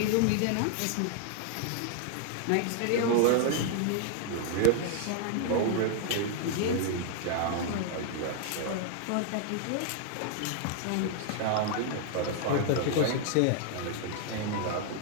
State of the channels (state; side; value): different; both; correlation 0.00